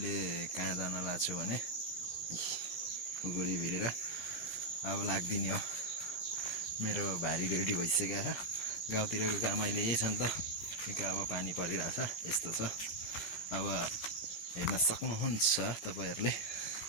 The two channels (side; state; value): right; late; 17 ms